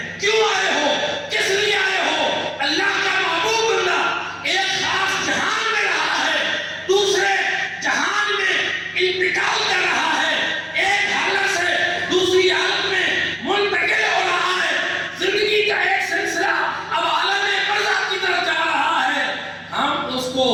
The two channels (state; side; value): identical; both; correlation 1.00